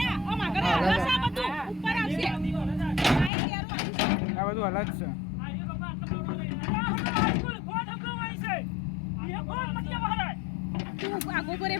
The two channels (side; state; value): right; drops out; at 3.3 s